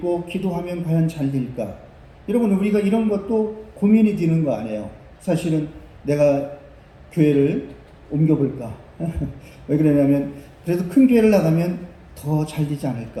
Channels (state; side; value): identical; both; correlation 1.00